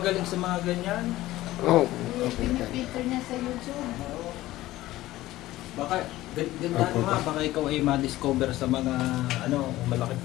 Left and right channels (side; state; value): right; quieter; 16.3 dB